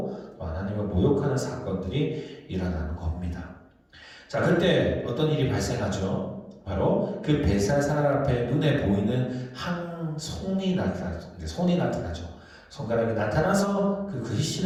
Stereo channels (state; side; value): identical; both; correlation 1.00